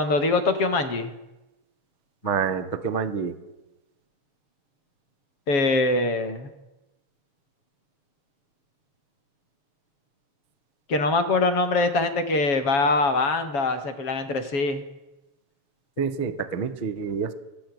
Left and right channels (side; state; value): right; late; 7.2 ms